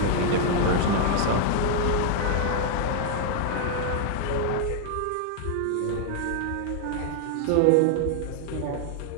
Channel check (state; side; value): different; both; correlation 0.00